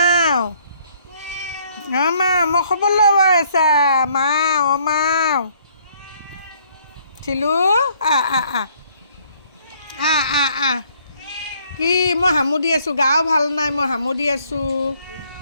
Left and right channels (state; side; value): inverted; both; correlation -0.63